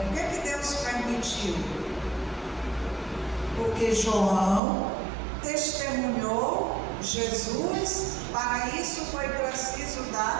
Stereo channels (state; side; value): drops out; left; at 4.6 s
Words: Por que Deus permitiu? Porque João testemunhou Jesus, para isso foi preciso